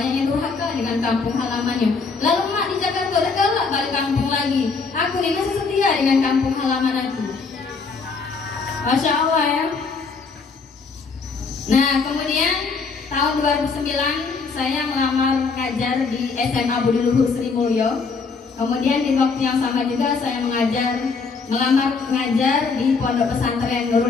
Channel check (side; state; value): right; quieter; 4.7 dB